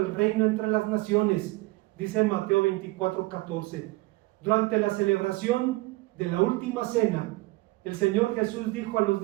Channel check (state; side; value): quieter; left; 21.3 dB